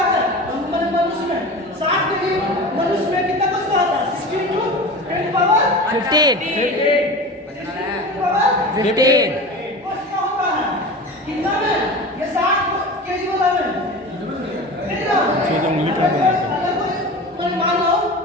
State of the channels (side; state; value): both; normal; correlation 0.32